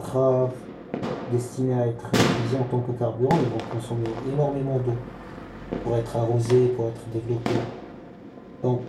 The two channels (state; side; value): identical; both; correlation 1.00